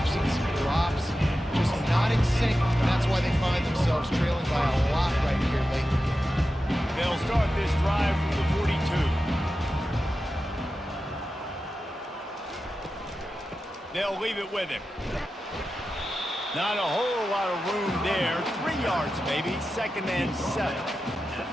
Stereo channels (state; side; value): normal; both; correlation 0.92